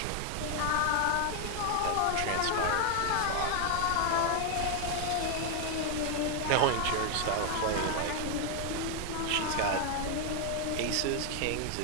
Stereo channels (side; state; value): both; different; correlation 0.00